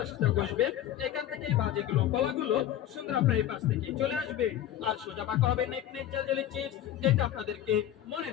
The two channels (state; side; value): quieter; right; 11.7 dB